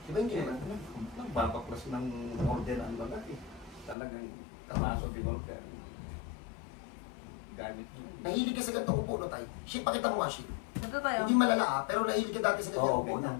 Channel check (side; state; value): right; drops out; at 4.0 s